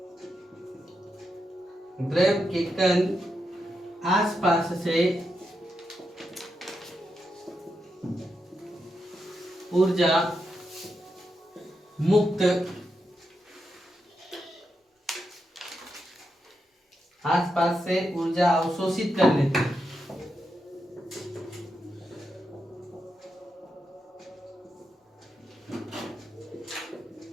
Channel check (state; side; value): normal; both; correlation 0.85